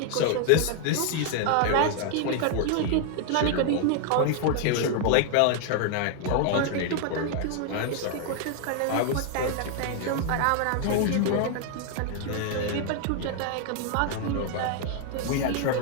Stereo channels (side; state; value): both; different; correlation 0.00